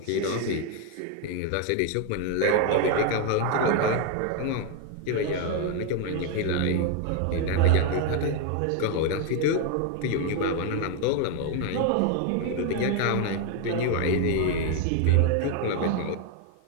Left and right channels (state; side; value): different; both; correlation 0.01